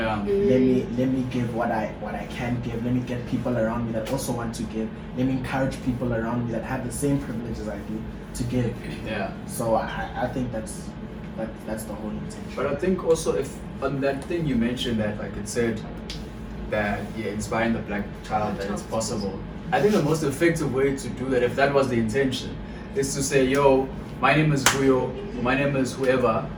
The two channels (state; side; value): identical; both; correlation 1.00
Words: let me give what I can give. Let me get people around me that also want to give. Let me encourage people around me that have the same privileges I do to give. Yeah. So I think that's the whole intention. But I think also if on that thing you mentioned that like it said that inspiring the black child that it's possible. I think the most effective way to do that, if that was the intention, is to say, yo, my name is Guyo, my name is whoever,